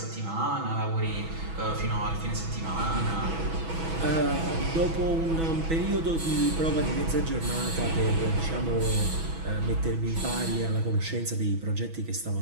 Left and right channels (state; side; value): late; left; 6.1 ms